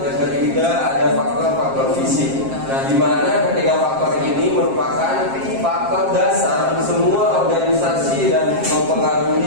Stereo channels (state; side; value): late; left; 7.5 ms